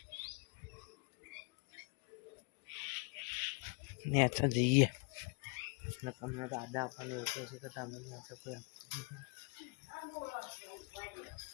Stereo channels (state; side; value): quieter; right; 33.4 dB